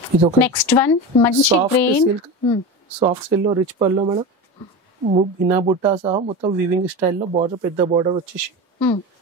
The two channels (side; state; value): both; normal; correlation 0.25